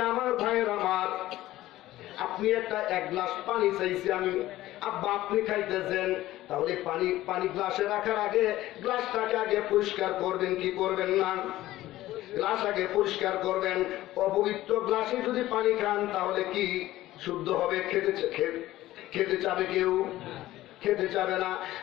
আমার, ভাইয়ের আমার, আপনি এক গ্লাস পানি চাইছি আমি, আব্বা আপনি খাইতেছেন, তাহলে পানি গ্লাসে রাখার আগে গ্লাসটাকে আগে পরিষ্কার করবেন কি করবেন না? গ্লাস আগে পরিষ্কার করবেন। অপবিত্র গ্লাসে যদি পানি খান তাহলে কি শুদ্ধ হবে? খেতে চাবে কেউ? খেতে চাবে না।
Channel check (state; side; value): quieter; right; 15.6 dB